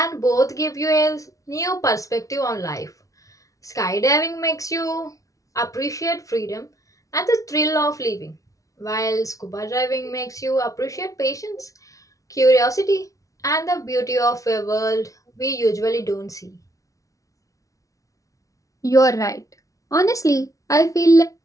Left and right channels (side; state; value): right; late; 0.16 ms